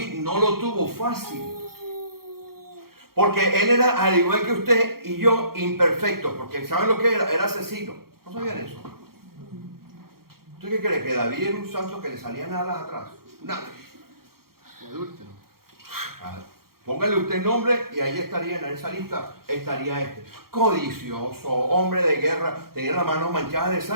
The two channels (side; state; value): left; late; 0.94 ms